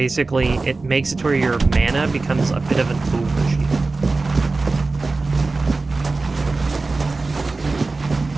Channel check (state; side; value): quieter; left; 3.6 dB